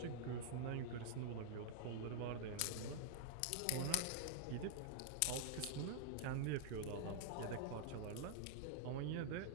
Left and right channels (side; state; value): both; different; correlation -0.01